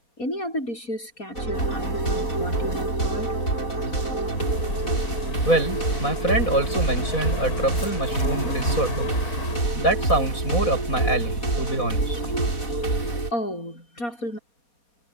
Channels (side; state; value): right; late; 4.0 ms